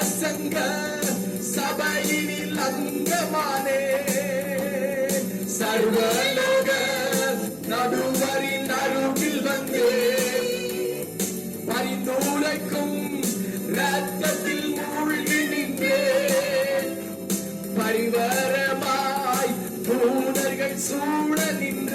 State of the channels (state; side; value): identical; both; correlation 1.00